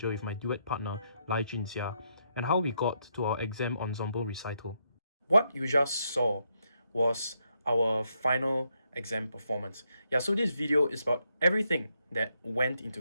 with my duet partner Lai Junjia, and how we got to our exam ensemble recital. What you just saw was our final exam performance. Yeah, so this video is about everything that went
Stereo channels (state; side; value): inverted; both; correlation -0.78